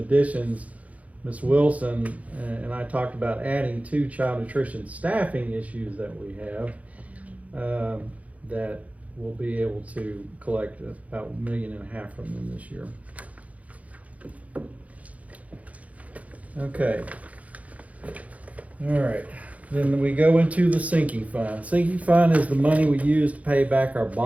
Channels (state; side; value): late; left; 0.068 ms